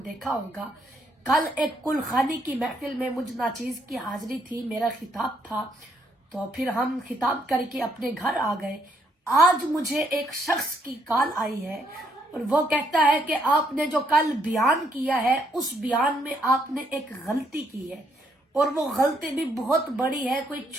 دیکھا ہوگا۔ کل ایک کل خانی کی محفل میں مجھ ناچیز کی حاضری تھی، میرا خطاب تھا، تو پھر ہم خطاب کر کے اپنے گھر آ گئے۔ آج مجھے ایک شخص کی کال آئی ہے اور وہ کہتا ہے کہ آپ نے جو کل بیان کیا ہے اس بیان میں آپ نے ایک غلطی کی ہے، اور وہ غلطی بھی بہت بڑی ہے، کوئی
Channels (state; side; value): normal; both; correlation 0.72